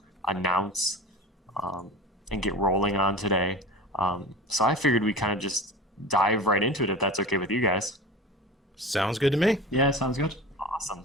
announce and get rolling on today. So I figured we kind of just dive right into it if that's okay with you guys. Sounds good to me. Yeah, sounds good. Awesome.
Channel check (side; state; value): both; normal; correlation 0.33